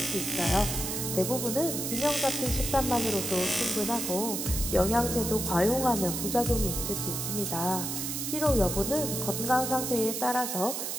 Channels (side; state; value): right; noise; hiss, 3 dB below the sound